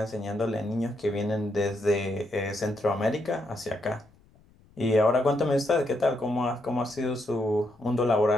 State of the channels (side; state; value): left; noise; rumble, 29 dB below the sound